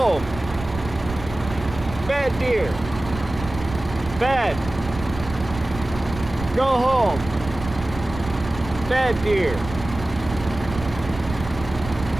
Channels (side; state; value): right; noise; rumble, 11 dB below the sound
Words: Bad deer. Bad. Go home. Bad deer.